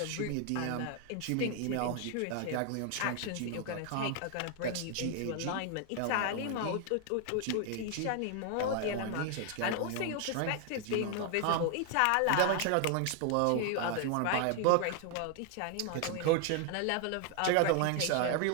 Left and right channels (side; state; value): both; different; correlation 0.00